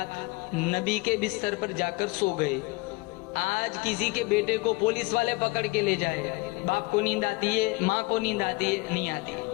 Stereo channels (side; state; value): right; quieter; 24.3 dB